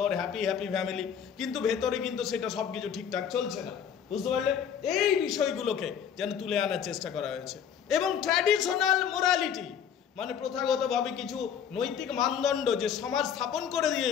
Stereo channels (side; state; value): right; quieter; 8.2 dB